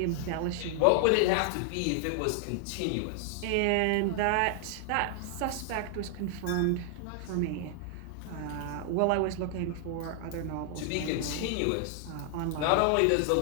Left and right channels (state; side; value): different; both; correlation 0.00